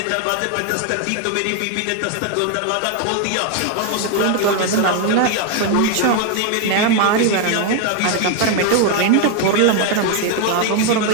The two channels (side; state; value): both; different; correlation 0.01